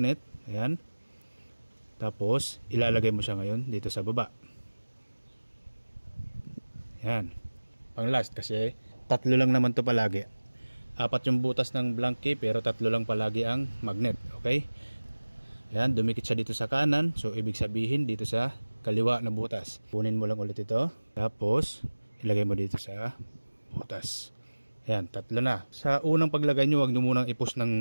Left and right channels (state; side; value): inverted; both; correlation -1.00